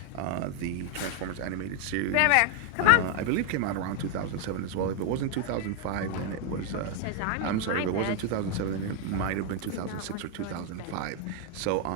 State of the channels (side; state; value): both; different; correlation 0.01